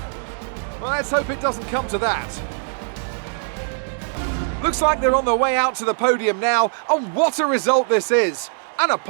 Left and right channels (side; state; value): left; silent; digital silence